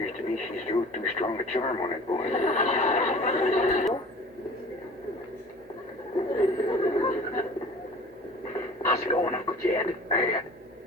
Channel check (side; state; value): both; normal; correlation 0.44